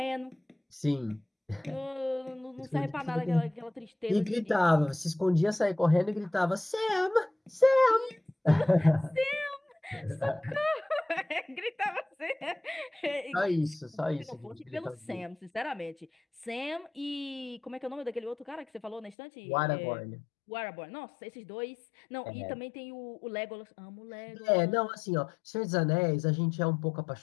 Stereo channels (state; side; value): drops out; right; at 19.2 s